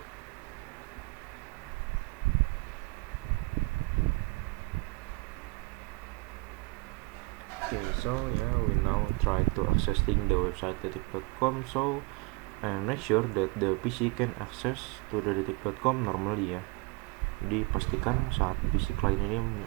Okay, so yeah, we now try to accessing the website detik.com. So and make sure that the PC can access to the detik.com normally ya. Jadi pastikan saat PC client ini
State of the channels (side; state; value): left; quieter; 26.0 dB